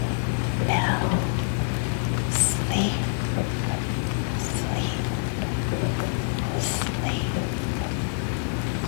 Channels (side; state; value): right; silent; 61 dB below the other